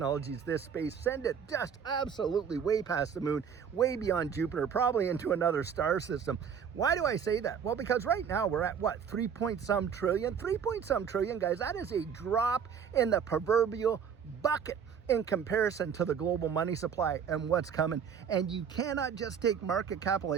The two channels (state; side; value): quieter; left; 7.3 dB